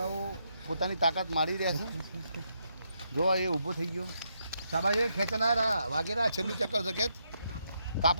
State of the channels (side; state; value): both; inverted; correlation -0.79